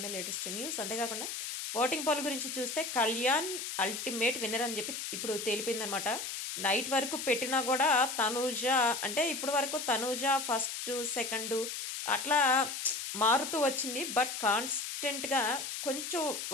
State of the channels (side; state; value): left; noise; hiss, 5 dB below the sound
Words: లేటెస్ట్ న్యూస్. అంతేకాకుండా ఓటింగ్ పోల్ గురించి చూస్తే కళ్యాణ్ అల్టిమేట్ విన్నర్ అని చెప్పి ఇప్పుడు తేలిపోయిందనమాట. నైట్ వరకు పెట్టినా గూడా తనూజ అంటే ఇప్పటి వరకు తనూజ ఫస్టు, సెకండు అట్లా మారుతూ వచ్చింది. బట్ కాన్స్టెంట్‌గా కొంచెం